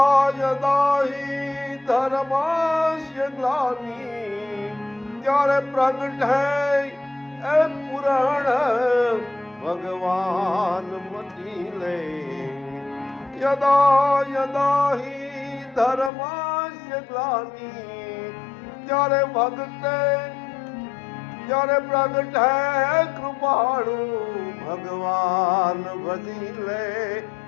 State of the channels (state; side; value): drops out; right; at 16.1 s